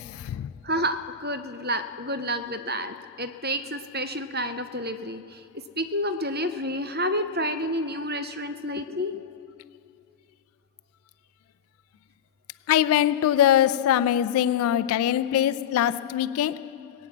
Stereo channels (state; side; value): quieter; right; 6.3 dB